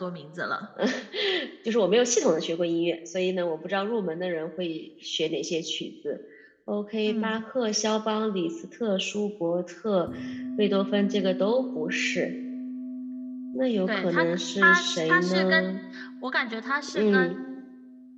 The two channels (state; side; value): identical; both; correlation 1.00